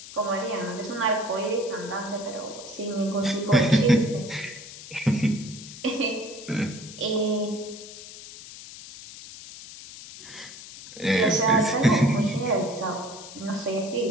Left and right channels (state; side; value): noise; left; hiss, 14 dB below the sound